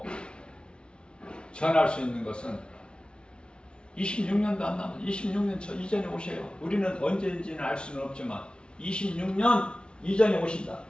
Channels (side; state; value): right; late; 0.056 ms